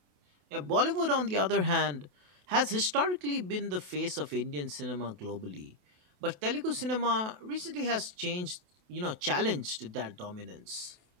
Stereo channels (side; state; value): left; late; 28 ms